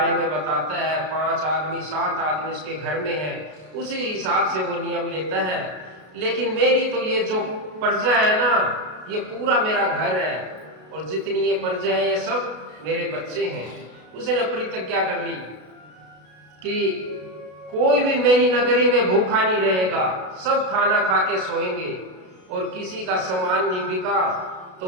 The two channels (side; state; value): left; late; 33 ms